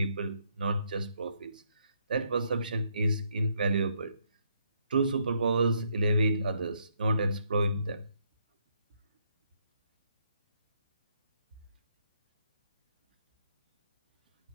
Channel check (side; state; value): both; inverted; correlation -0.73